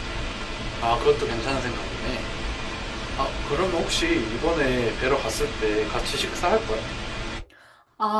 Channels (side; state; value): both; identical; correlation 1.00